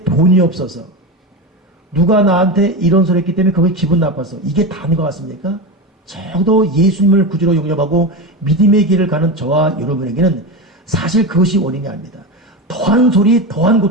돈이 없어서, 누가 나한테 이런 소리 했기 때문에 그게 기분 나빠서, 이게 다인 것 같습니까? 적어도 예수님을 구주로 영접하고 믿음의 길을 가는 저와 여러분에게는 사실 그것이 원인이 아닙니다. 더한 소리, 더한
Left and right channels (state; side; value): normal; both; correlation 0.19